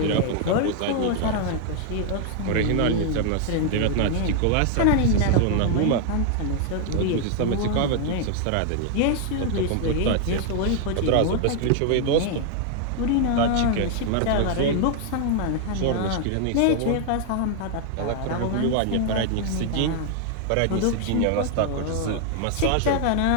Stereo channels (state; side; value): different; both; correlation 0.00